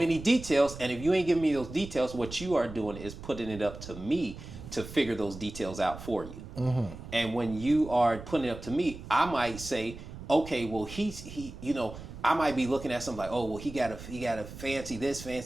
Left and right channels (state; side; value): noise; right; rumble, 13 dB below the sound